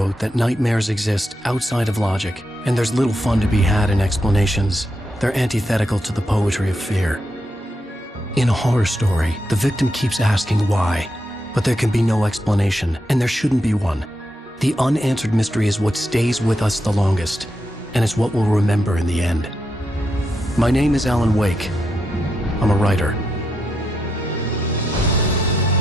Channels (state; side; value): normal; both; correlation 0.83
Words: that nightmares exist outside of logic, and there's little fun to be had in explanations. They're antithetical to the poetry of fear. In a horror story, the victim keeps asking why, but there can be no explanation, and there shouldn't be one. The unanswered mystery is what stays with us the longest, and it's what we'll remember in the end. My name is Alan Wake. I'm a writer.